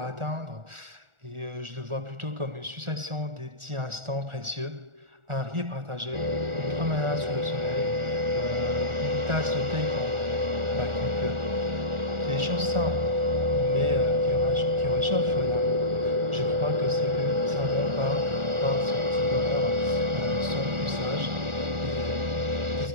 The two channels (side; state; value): left; late; 1.4 ms